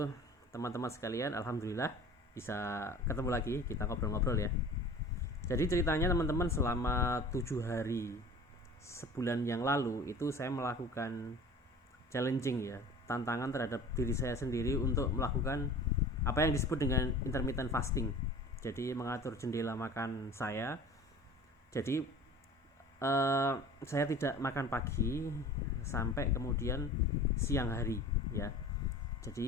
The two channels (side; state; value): both; normal; correlation 0.42